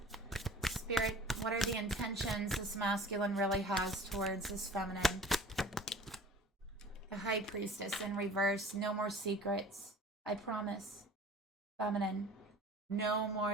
Spirit, what are the intentions this masculine really has towards this feminine? The High Priestess in reverse. No more secrets. I promise. Feminine. No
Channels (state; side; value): normal; both; correlation 0.44